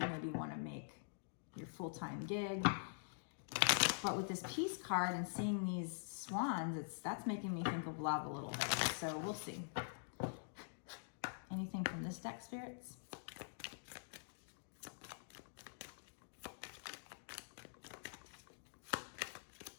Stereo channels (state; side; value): silent; right; digital silence